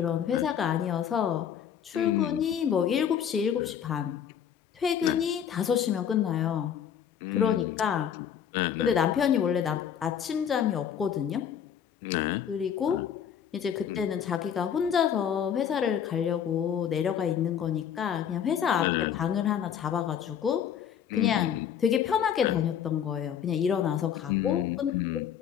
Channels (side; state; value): right; quieter; 8.7 dB